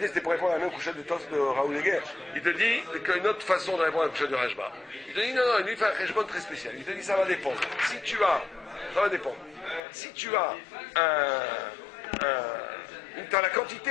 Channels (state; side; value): drops out; right; at 9.8 s